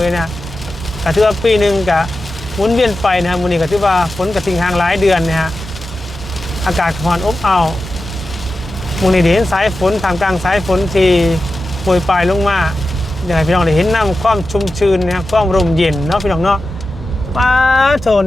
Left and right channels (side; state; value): both; normal; correlation 0.92